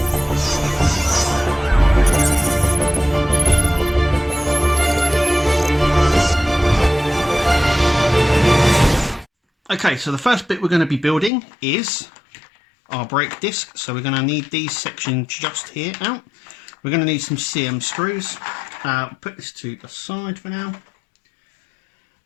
Okay, so the first bit we're going to be building is our brake disc. So we're going to need these sections just here out. We're going to need some CM screws. Put this to the side for now.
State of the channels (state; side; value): drops out; right; at 11.3 s